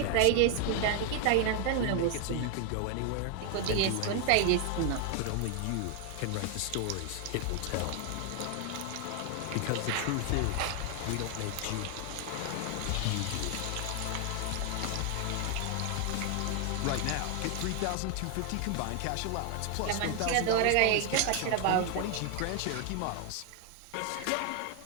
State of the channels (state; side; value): different; both; correlation 0.00